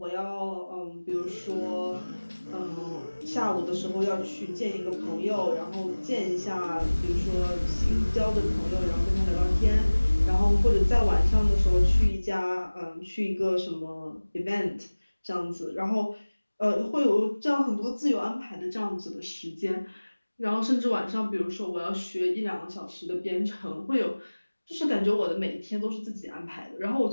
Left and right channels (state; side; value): inverted; both; correlation -1.00